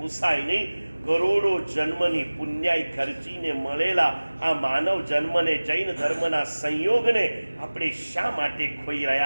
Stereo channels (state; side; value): inverted; both; correlation -1.00